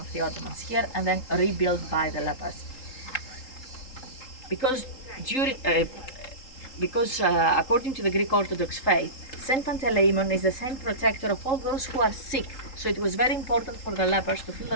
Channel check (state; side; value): late; right; 3.8 ms